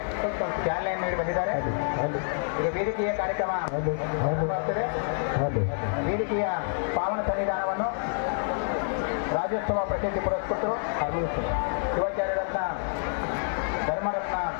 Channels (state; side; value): silent; right; 60 dB below the other